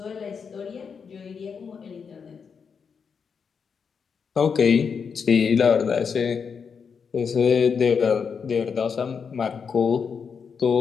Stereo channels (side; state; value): right; quieter; 6.2 dB